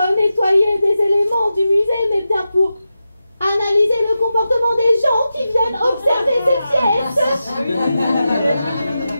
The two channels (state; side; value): inverted; both; correlation -0.91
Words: nettoyer des éléments du musée, mais bien pour analyser le comportement des gens qui viennent observer ces pièces.